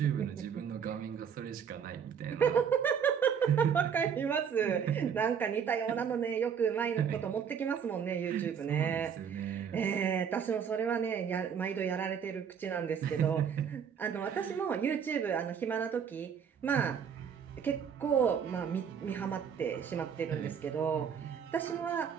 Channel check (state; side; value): quieter; left; 7.5 dB